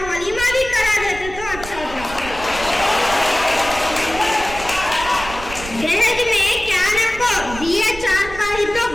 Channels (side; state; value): right; noise; rumble, 12 dB below the sound